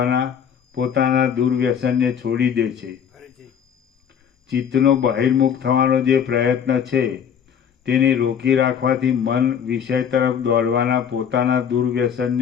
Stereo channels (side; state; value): right; quieter; 8.0 dB